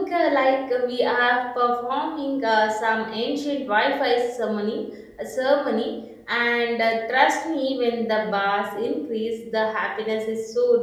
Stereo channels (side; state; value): both; identical; correlation 1.00